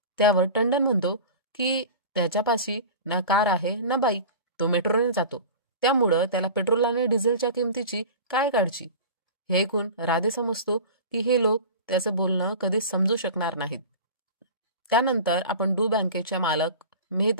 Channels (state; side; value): inverted; both; correlation -0.35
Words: त्यावर टंडन म्हणतो की त्याच्यापाशी ना कार आहे ना बाईक, तो मेट्रोने जातो, त्यामुळं त्याला पेट्रोल आणि डिझेलच्या किमतीची काय काळजी. हे ऐकून राधे समजतो की हे लोक त्याचं बोलणं कधीच समजू शकणार नाहीत. त्यानंतर आपण डू बँकेच्या मालक